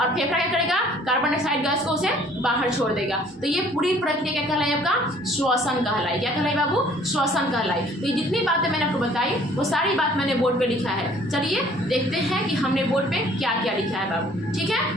फेफड़ा क्या करेगा, कार्बन डाइऑक्साइड गैस को उसे बाहर छोड़ देगा। तो ये पूरी प्रक्रिया क्या कहलाई, आपका श्वसन कहलाई। क्या कहलाई बाबू, श्वसन कहलाई। तो ये जितनी बातें मैंने आपको बताई वो सारी बात मैंने बोर्ड पे लिखा है। चलिए देखते हैं कि हमने बोर्ड पे क्या क्या लिखा है बाबू। ठीक है,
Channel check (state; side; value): normal; both; correlation 0.56